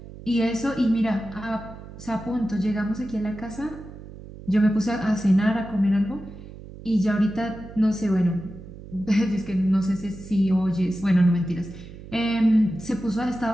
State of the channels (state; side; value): noise; right; hum, 15 dB below the sound